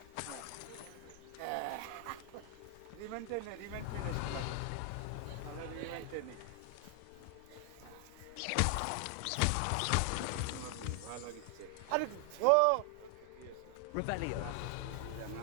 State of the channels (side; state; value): both; different; correlation 0.00